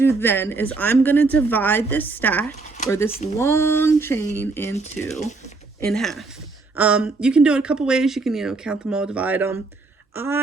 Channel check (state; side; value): quieter; left; 3.7 dB